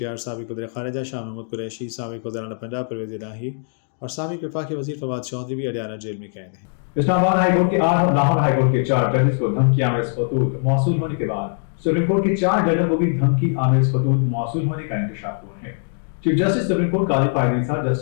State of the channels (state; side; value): silent; right; digital silence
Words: साबिक़ वज़ीर ख़ारिजा शाह महमूद कुरैशी, साबिक़ वज़ीर आला पंजाब परवेज़ इलाही और साबिक़ वफाकी वज़ीर फवाद चौधरी भी अडियाला जेल में कैद हैं। इस्लामाबाद हाई कोर्ट के 8 और लाहौर हाई कोर्ट के 4 जजेस को धमकी आमेज खतूत मौसूल होने के बाद सुप्रीम कोर्ट के 4 जजों को भी धमकी आमेज खतूत मौसूल होने का इंकशाफ हुआ है। चीफ जस्टिस सुप्रीम कोर्ट काजी फायद ईसा,